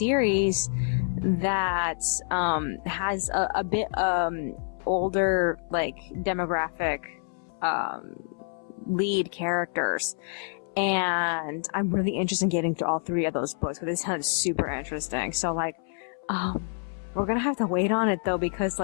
that has a bit older like demographic lead characters, and I'm really interested in getting through all 3 of those books, because they sound super interesting. So like we're gonna have to wait on it though, because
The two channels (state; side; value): silent; right; 60 dB below the other